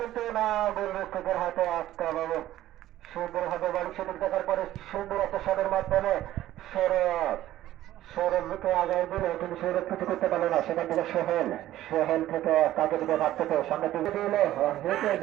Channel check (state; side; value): quieter; left; 14.0 dB